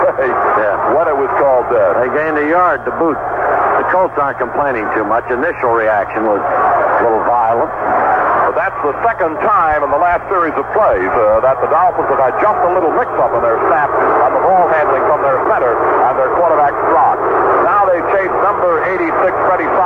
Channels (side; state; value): both; identical; correlation 1.00